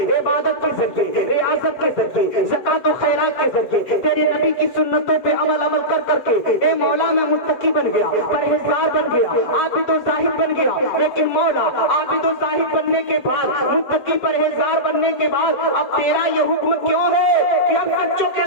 عبادت کے ذریعے، ریاضت کے ذریعے، زکات و خیرات کے ذریعے، تیرے نبی کی سنتوں پہ عمل کر کے، اے مولا میں متقی بن گیا، پرہیزگار بن گیا، عابد و زاہد بن گیا۔ لیکن مولا عابد و زاہد بننے کے بعد، متقی پرہیزگار بننے کے بعد اب تیرا یہ حکم کیوں ہے کہ اب سچوں کے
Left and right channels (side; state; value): right; late; 7.6 ms